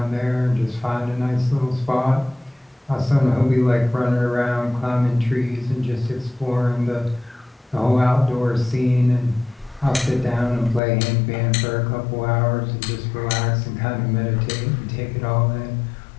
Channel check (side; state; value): right; drops out; at 10.8 s